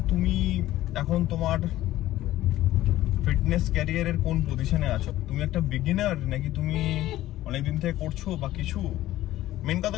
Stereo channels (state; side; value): quieter; right; 14.9 dB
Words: তুমি এখন তোমার ফিটনেস ক্যারিয়ারের কোন পজিশনে আছো। তুমি একটা বিগিনার নাকি তুমি অনেকদিন থেকে করছো বা কিছু। মেন কথা